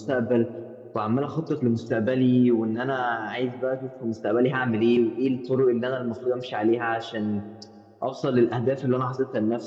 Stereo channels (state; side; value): identical; both; correlation 1.00